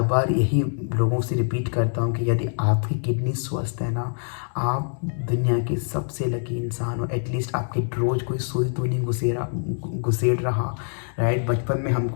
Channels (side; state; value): right; silent; digital silence